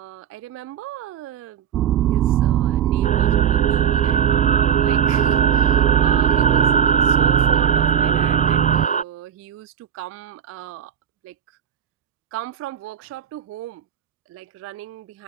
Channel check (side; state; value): left; quieter; 8.5 dB